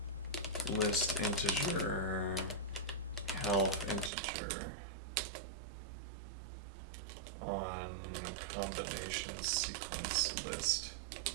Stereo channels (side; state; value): left; drops out; at 4.1 s